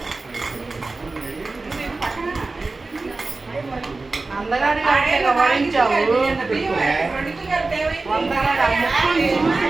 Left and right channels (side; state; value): left; quieter; 3.5 dB